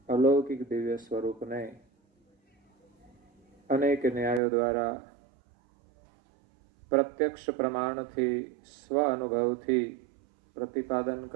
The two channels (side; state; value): left; drops out; at 4.4 s